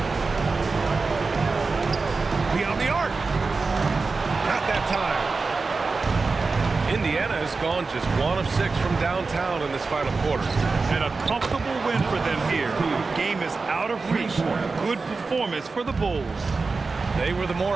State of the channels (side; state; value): left; quieter; 4.1 dB